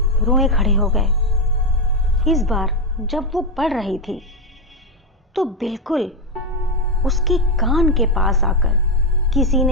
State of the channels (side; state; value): both; normal; correlation 0.07